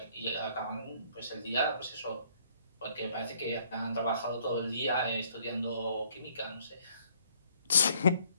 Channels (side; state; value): both; inverted; correlation -0.64